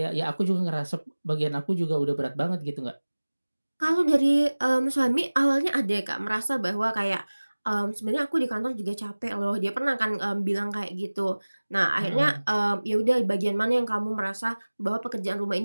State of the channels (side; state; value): both; inverted; correlation -1.00